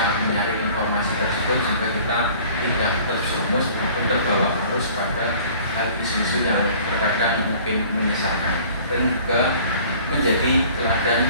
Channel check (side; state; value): both; inverted; correlation -0.50